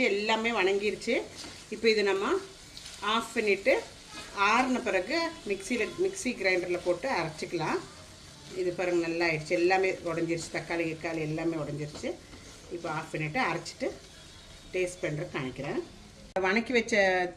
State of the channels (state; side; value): identical; both; correlation 1.00